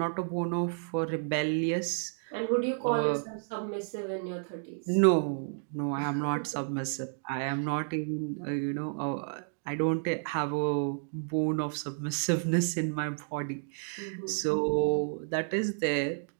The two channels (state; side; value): silent; left; digital silence